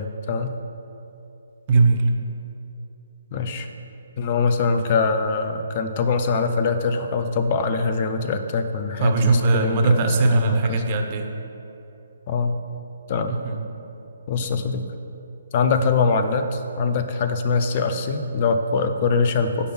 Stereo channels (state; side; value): inverted; both; correlation -0.65